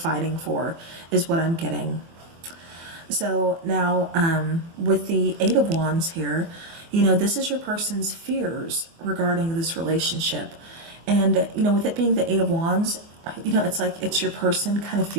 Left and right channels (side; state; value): left; late; 24 ms